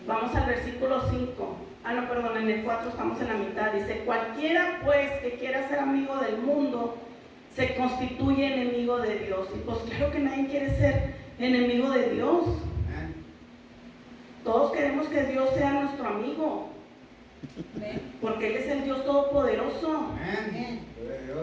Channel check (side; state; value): both; identical; correlation 1.00